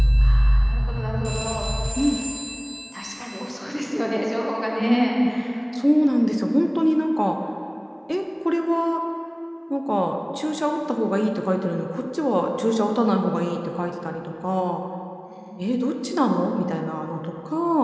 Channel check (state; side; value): identical; both; correlation 1.00